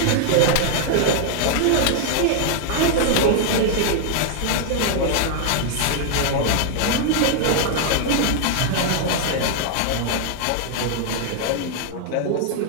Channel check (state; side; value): different; both; correlation 0.00